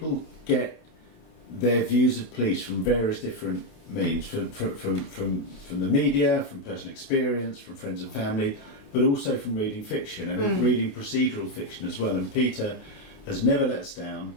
get their views of police from various different means, from the media, from personal experience, from friends and family, but also from reading fiction and reading procedural fiction as well. And Peter has never let us down,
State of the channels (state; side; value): late; right; 28 ms